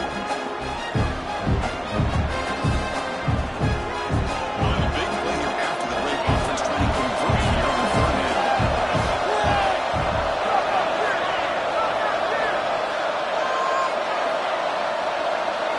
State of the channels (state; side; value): identical; both; correlation 1.00